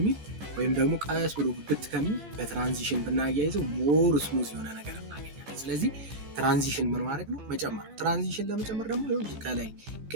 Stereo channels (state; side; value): late; left; 15 ms